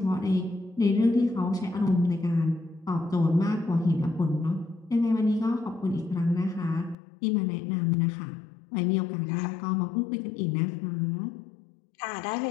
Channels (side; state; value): right; drops out; at 7.0 s